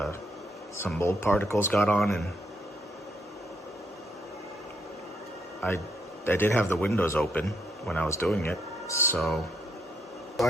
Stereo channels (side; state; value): both; normal; correlation 0.75